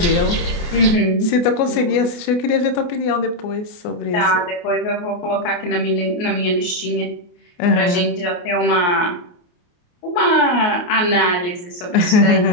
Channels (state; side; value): late; right; 28 ms